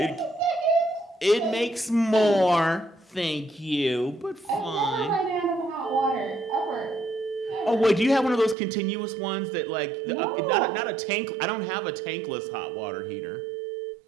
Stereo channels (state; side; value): drops out; left; at 8.6 s